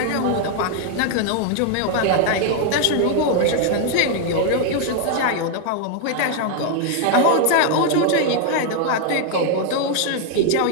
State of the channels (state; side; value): different; both; correlation 0.00